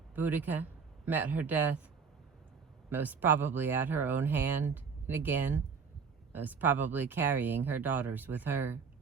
Boudica met her death, most probably at her own hand, and again, most probably carrying her daughters with her.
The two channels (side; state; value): left; quieter; 5.7 dB